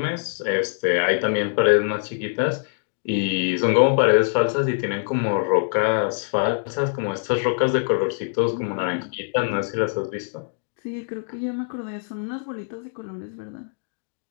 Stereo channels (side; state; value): right; silent; digital silence